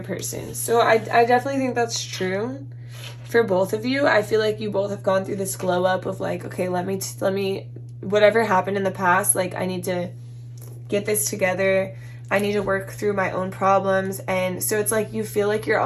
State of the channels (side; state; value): both; identical; correlation 1.00